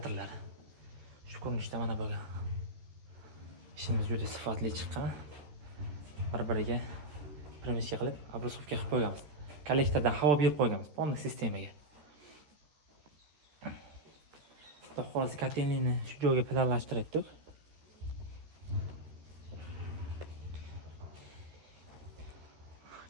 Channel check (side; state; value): left; late; 13 ms